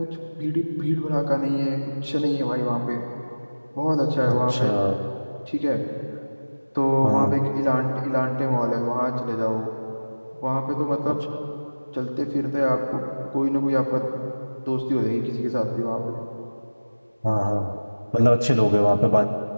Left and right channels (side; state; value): both; inverted; correlation -1.00